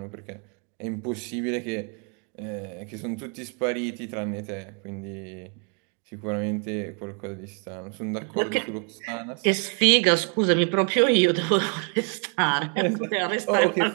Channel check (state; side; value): quieter; left; 38.6 dB